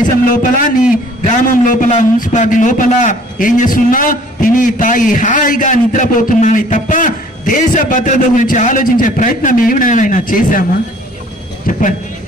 లోపల, నీ గ్రామం లోపల, మున్సిపాలిటీ లోపల ఏం చేస్తున్నా? తిని తాగి హాయిగా నిద్రపోతున్నావు తప్ప దేశ భద్రత గురించి ఆలోచించే ప్రయత్నం ఏమైనా చేశామా? చెప్పండి,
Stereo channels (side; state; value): both; normal; correlation 0.54